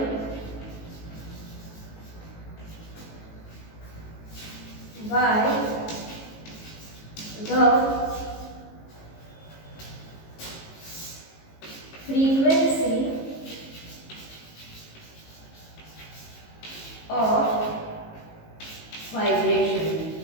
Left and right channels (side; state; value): right; late; 18 ms